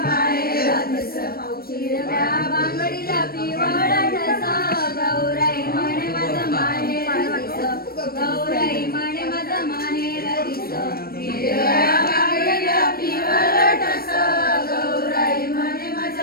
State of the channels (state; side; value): late; right; 0.44 ms